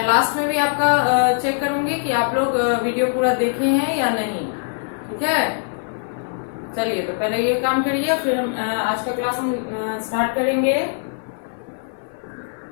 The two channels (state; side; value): silent; right; 55 dB below the other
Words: लास्ट में भी आपका चेक करूंगी कि आप लोग वीडियो पूरा देखे हैं या नहीं, ठीक है। चलिए तो पहले ये काम करिए, फिर हम आज का क्लास हम स्टार्ट करेंगे।